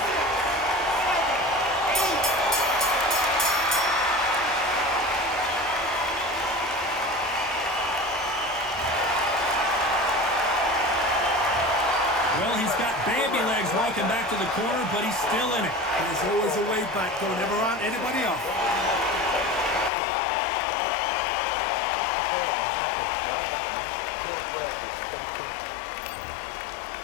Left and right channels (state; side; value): drops out; right; at 19.9 s